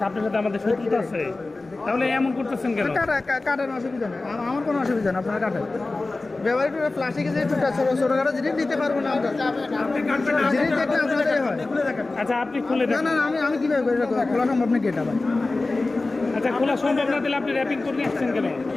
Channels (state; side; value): quieter; right; 3.3 dB